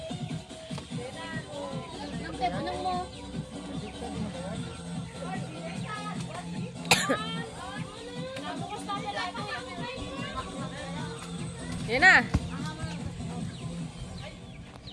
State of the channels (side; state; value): both; identical; correlation 1.00